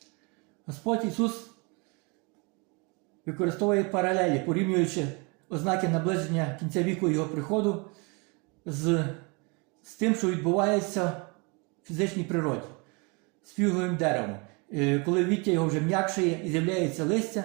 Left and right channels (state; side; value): quieter; left; 30.7 dB